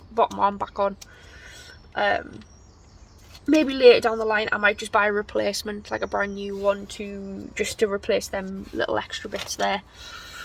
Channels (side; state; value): both; identical; correlation 1.00